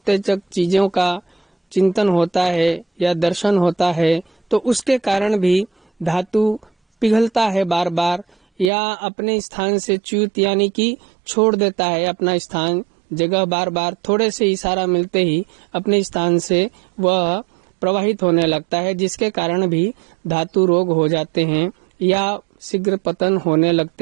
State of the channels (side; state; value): left; drops out; at 8.7 s